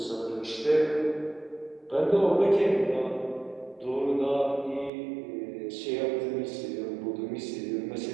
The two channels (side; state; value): left; drops out; at 4.9 s